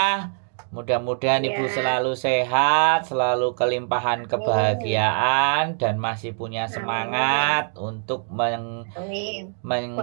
Mudah-mudahan Ibu selalu sehat, selalu kelimpahan kebahagiaan dan masih punya semangat untuk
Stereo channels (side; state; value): left; silent; digital silence